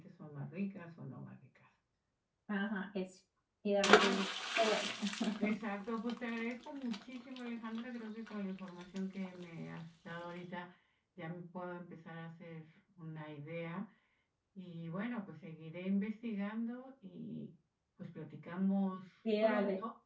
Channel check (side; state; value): both; identical; correlation 1.00